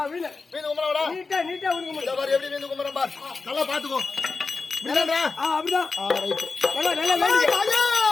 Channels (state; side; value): quieter; right; 4.2 dB